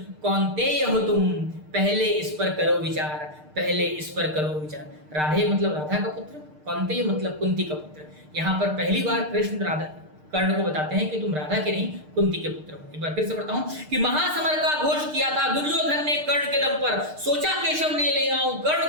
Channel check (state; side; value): late; left; 6.6 ms